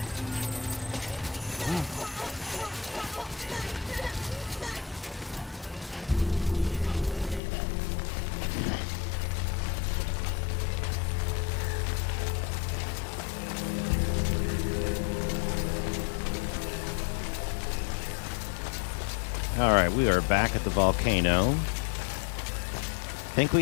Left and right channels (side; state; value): right; drops out; at 7.4 s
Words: Alright, we are back at the volcano. Think